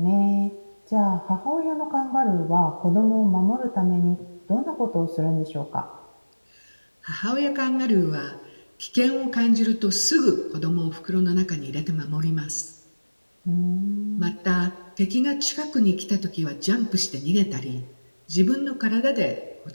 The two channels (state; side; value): inverted; both; correlation -1.00